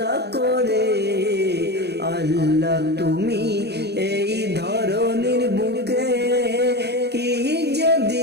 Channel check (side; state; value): left; late; 0.48 ms